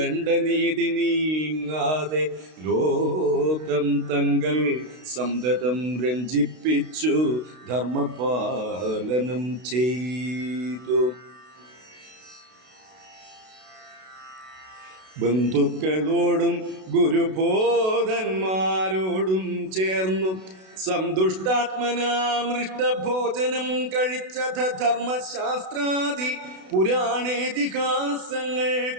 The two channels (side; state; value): left; late; 32 ms